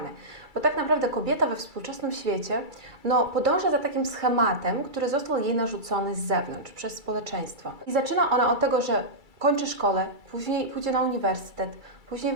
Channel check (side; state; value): left; late; 2.3 ms